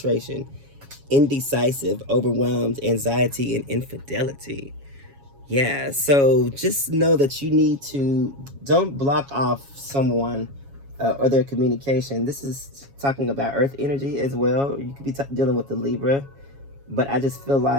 indecisive, overwhelmed, anxiety, and infidelity. Yeah, so just know that you need to, don't block off someone or their communication. This is talking about earth energy as well. You could be dealing with the Libra, but I just feel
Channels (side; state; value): left; late; 7.2 ms